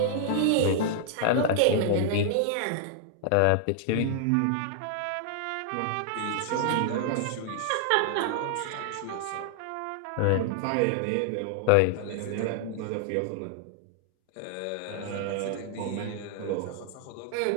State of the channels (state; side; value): different; both; correlation 0.00